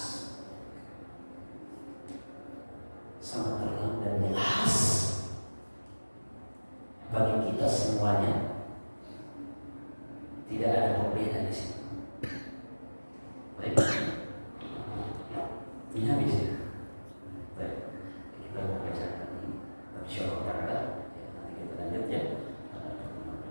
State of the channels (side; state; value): both; inverted; correlation -1.00